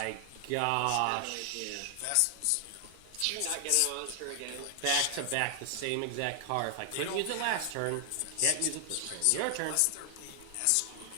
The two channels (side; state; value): both; different; correlation 0.00